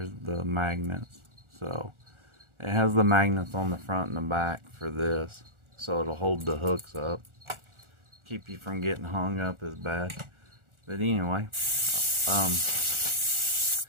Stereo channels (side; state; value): left; late; 1.4 ms